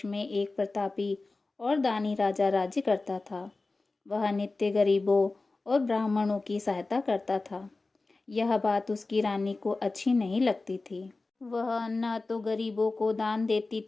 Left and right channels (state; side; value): quieter; right; 3.5 dB